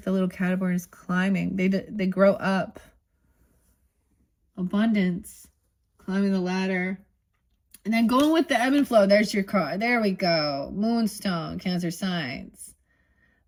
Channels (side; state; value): both; identical; correlation 1.00